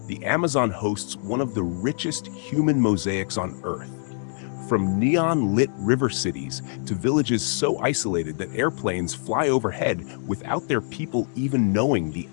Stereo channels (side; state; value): right; silent; digital silence